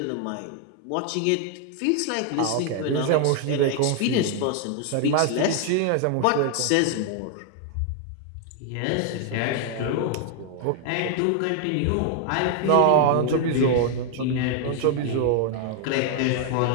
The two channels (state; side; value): different; both; correlation 0.00